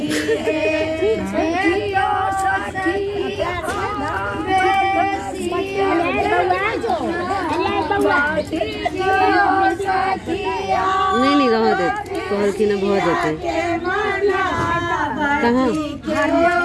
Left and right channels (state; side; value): identical; both; correlation 1.00